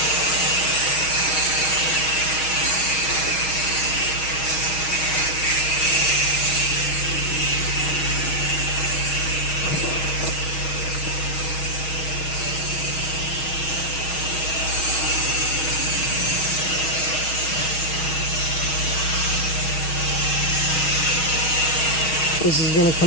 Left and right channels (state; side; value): late; right; 6.3 ms